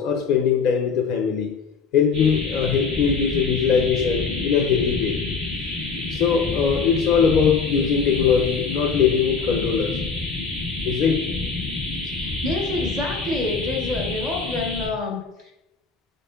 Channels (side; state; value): right; quieter; 5.4 dB